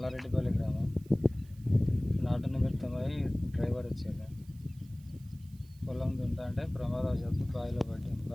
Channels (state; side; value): noise; right; hiss, 28 dB below the sound